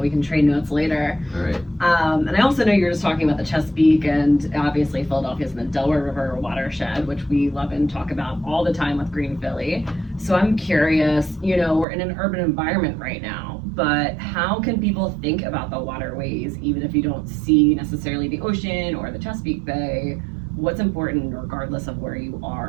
we can trade notes later. All right. And I also know you're just talking about the Chesapeake, and obviously Philadelphia's in the Delaware River watershed, which we love and talk about all the time with Green Philly. So I'm curious, we're in an urban environment right now, but how can people think about the waterways, even if you don't see necessarily the ocean or the Chesapeake Bay? What's important regardless of where you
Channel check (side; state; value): left; drops out; at 11.9 s